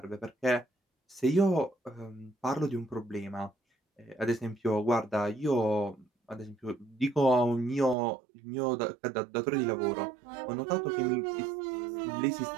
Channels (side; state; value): left; drops out; at 8.0 s